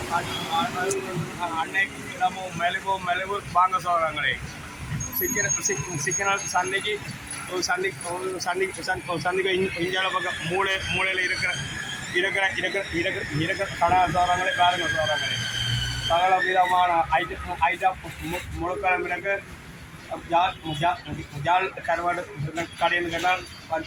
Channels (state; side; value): identical; both; correlation 1.00